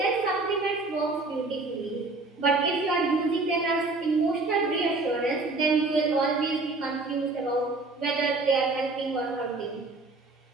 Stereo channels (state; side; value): quieter; left; 3.4 dB